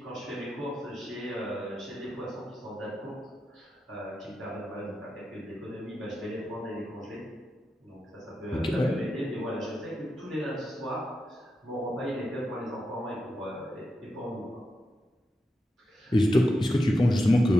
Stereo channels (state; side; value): normal; both; correlation 0.88